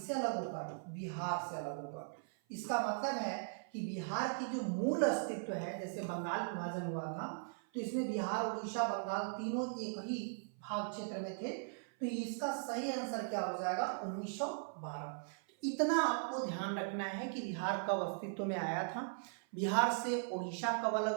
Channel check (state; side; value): silent; left; 52 dB below the other